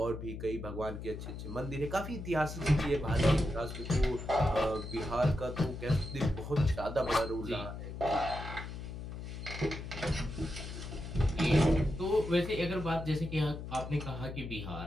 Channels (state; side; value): noise; left; hum, 8 dB below the sound